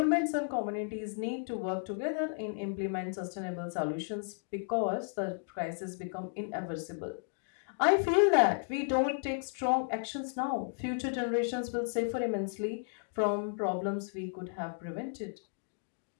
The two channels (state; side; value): silent; right; digital silence